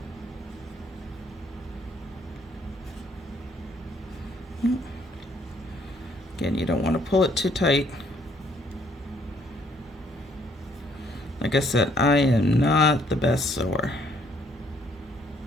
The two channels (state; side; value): normal; both; correlation 0.66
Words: Again, you don't want to pull it too tight. Like I said, I am not the best sewer.